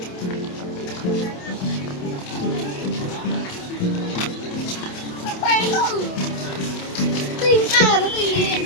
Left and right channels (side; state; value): right; late; 27 ms